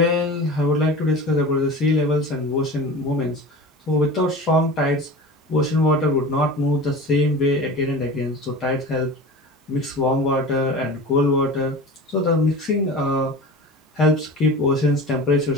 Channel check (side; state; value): both; normal; correlation 0.33